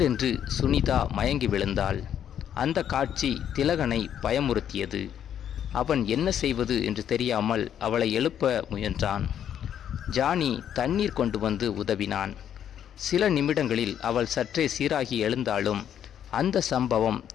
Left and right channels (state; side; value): quieter; right; 9.6 dB